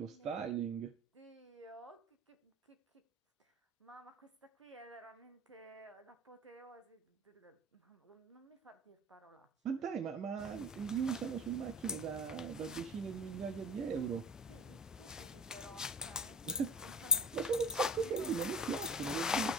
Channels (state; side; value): normal; both; correlation 0.36